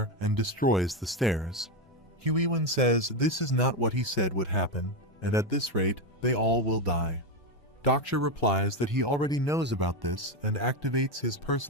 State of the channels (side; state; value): both; normal; correlation 0.10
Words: and destroys the stairs. Huiwen says this is not what he said would happen, and at this rate, they all will die. Dokja replies that he already knows about this and activates his